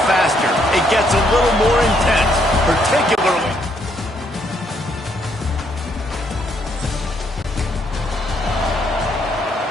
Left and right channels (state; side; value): normal; both; correlation 0.71